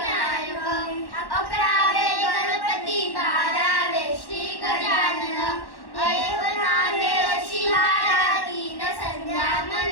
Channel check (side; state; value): right; late; 1.1 ms